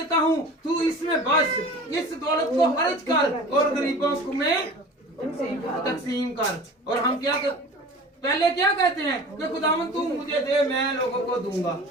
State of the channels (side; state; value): both; normal; correlation 0.39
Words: हूँ, तू इसमें बस इस दौलत को खर्च कर और गरीबों को में तकसीम कर। और हम क्या पहले क्या कहते हैं कि खुदावन तू मुझे दे मैं लोगों को दूंगा।